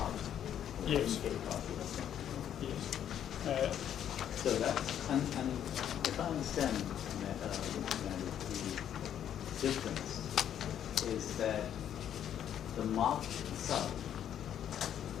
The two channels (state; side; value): quieter; right; 9.9 dB